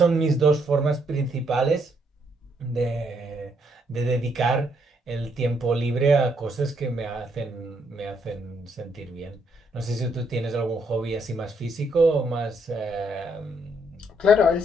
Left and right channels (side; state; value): both; normal; correlation 0.72